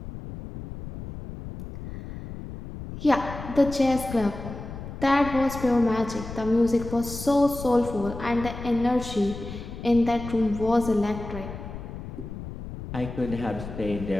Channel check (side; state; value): left; noise; rumble, 10 dB below the sound